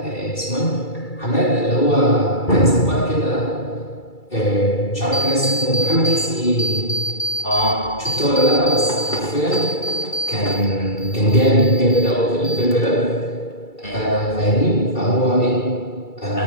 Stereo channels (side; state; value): right; late; 2.3 ms